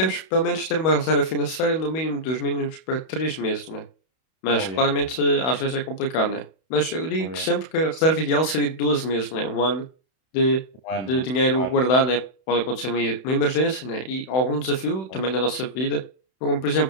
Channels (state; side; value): late; right; 31 ms